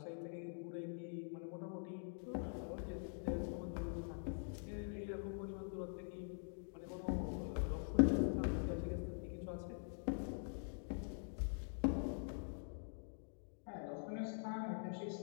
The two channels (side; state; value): right; silent; digital silence